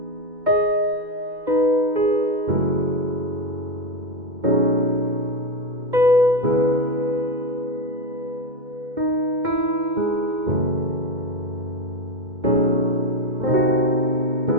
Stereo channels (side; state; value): left; late; 2.1 ms